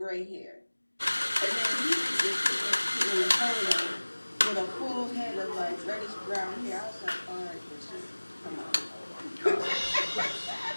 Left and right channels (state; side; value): inverted; both; correlation -1.00